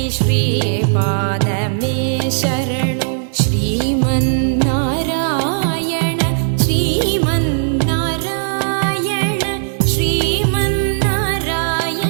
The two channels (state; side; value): silent; left; digital silence